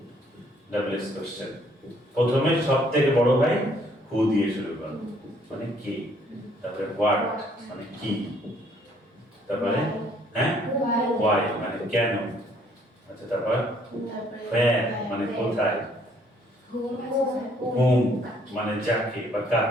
ডাব্লিউএস কোশ্চেন প্রথমে সবথেকে বড় ভাই হু দিয়ে শুরু করো, মানে কে। তারপরে হোয়াট মানে কি, তারপরে হ্যাঁ ওয়াই মানে কেন। আচ্ছা তারপর where মানে কোথায়, হুম আছে স্যার। whom মানে যাকে বা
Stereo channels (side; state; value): both; normal; correlation 0.64